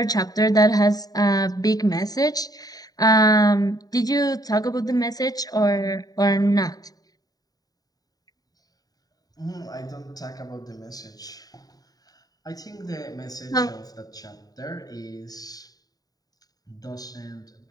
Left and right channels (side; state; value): right; late; 0.18 ms